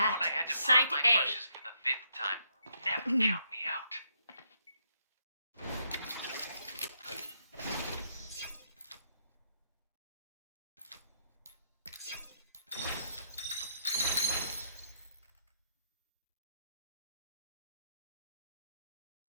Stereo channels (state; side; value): inverted; both; correlation -0.75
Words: had to Site pop my A. brushes for the 5th time. Never count me out.